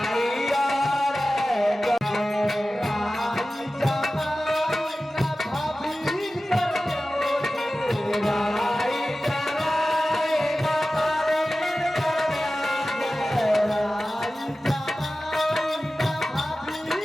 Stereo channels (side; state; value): both; normal; correlation 0.95